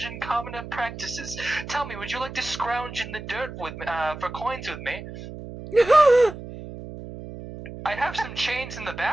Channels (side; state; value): right; noise; hum, 11 dB below the sound